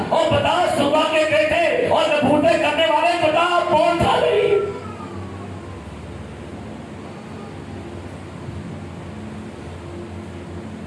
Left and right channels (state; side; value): identical; both; correlation 1.00